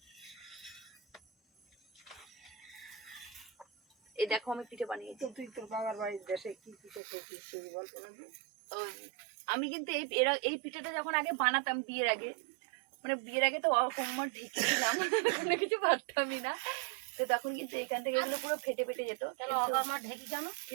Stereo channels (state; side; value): drops out; left; at 7.0 s